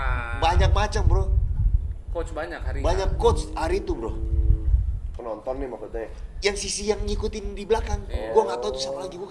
banyak macam bro, Coach banyak hari ini. banyak coach hari itu bro. Penonton nih maksudnya. Yang sisi yang ngikutin di belakang, gue nggak tahu tuh siapa lagi, gue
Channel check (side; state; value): both; identical; correlation 1.00